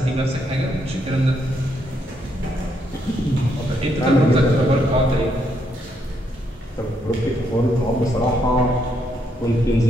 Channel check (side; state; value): both; normal; correlation 0.75